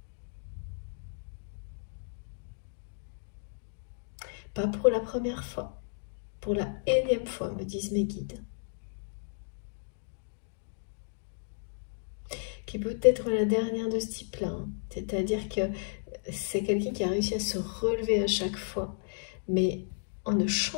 Pas pour la première fois, pour la énième fois, me disent mes guides. Qui peut être la dernière de ce type-là. Hein. C'est-à-dire que c'est quelqu'un qui a réussi à se relever à chaque fois, mais en ne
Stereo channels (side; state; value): right; silent; digital silence